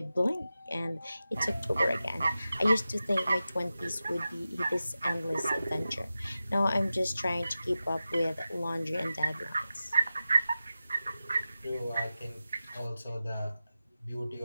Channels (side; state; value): both; inverted; correlation -0.93